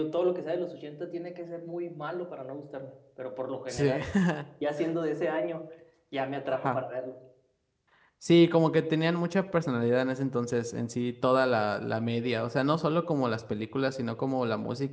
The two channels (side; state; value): both; identical; correlation 1.00